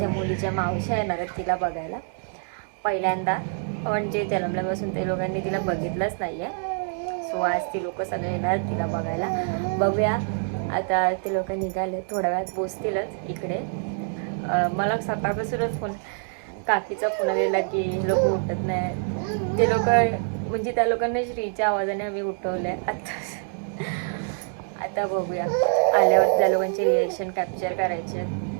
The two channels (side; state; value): left; silent; 61 dB below the other